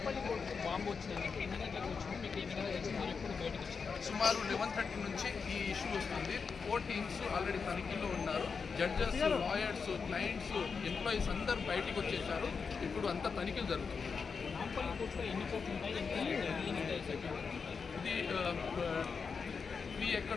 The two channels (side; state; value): right; quieter; 5.5 dB